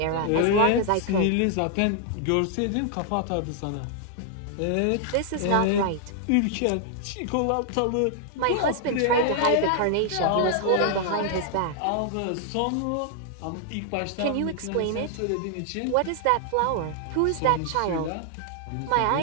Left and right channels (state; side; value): different; both; correlation 0.00